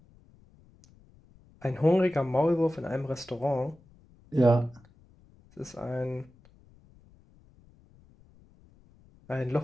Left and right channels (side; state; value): left; noise; rumble, 28 dB below the sound